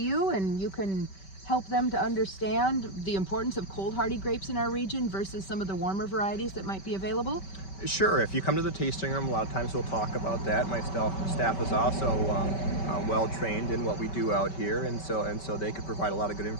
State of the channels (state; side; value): late; right; 5.2 ms